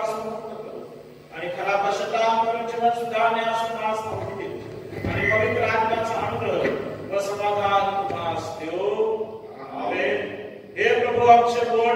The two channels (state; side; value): identical; both; correlation 1.00